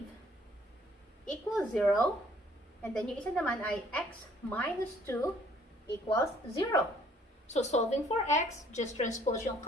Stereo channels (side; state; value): both; normal; correlation 0.59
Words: equals 0. And then yung isa naman ay x minus 2 equals 0. So, solving for x, just transpose yung